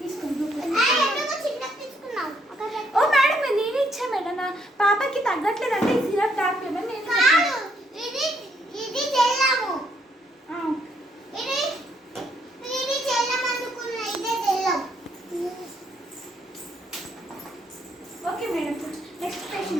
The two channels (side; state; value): both; normal; correlation 0.72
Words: తీసుకోండి. ఓ మేడం, నేను ఇచ్చా మేడం, నా పాపకి తగ్గట్లేదు అంటే ఈ సిరప్ తాగలేదు. Okay madam, next